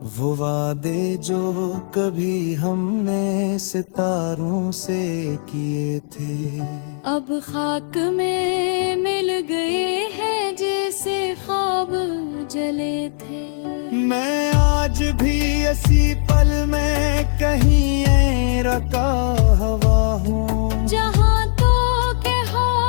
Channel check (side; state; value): right; silent; digital silence